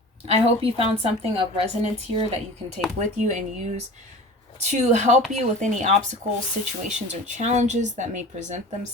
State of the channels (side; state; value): both; normal; correlation 0.38